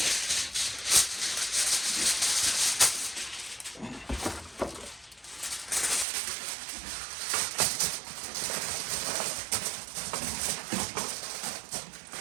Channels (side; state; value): left; drops out; at 6.1 s